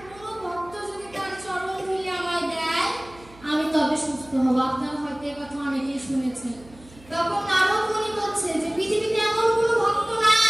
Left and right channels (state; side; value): noise; right; hum, 23 dB below the sound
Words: কোনো ভক্ত যদি তার চরণ ধুলি আমায় দেয় আমি তবে সুস্থ হব। আপনারা হয়তো এই কথা অনেকেই শুনেছেন। তখন নারদ মুনি বলছে যে পৃথিবীতে এমন কোনো ভক্ত